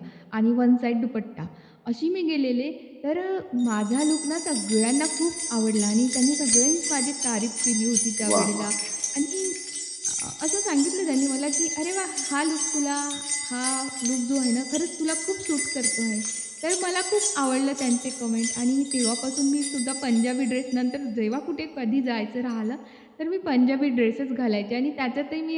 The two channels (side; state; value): both; identical; correlation 1.00